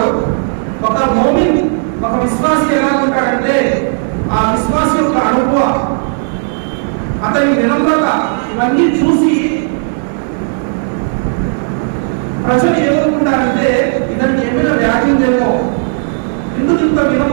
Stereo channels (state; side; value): silent; left; digital silence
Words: ఒక మోమిన్, ఒక విశ్వాసి ఎలా ఉంటాడంటే ఆ విశ్వాసి యొక్క అనుభవం, అతని వినమ్రత ఇవన్నీ చూసి ప్రజలు ఏమనుకుంటారంటే ఇతనికి ఏమైనా వ్యాధి ఉందేమో, ఎందుకు ఇంత